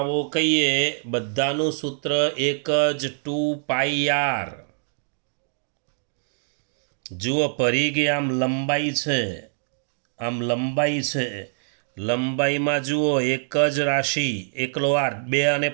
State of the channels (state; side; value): silent; left; digital silence